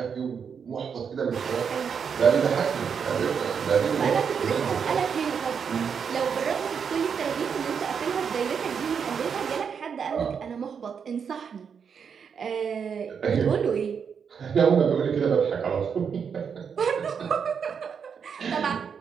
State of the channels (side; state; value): left; quieter; 6.8 dB